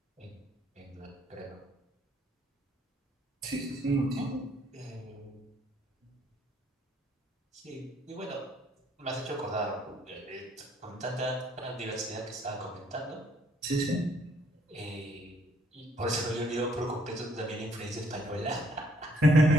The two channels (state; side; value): normal; both; correlation 0.67